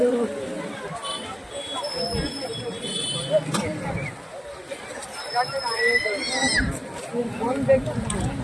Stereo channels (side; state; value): both; identical; correlation 1.00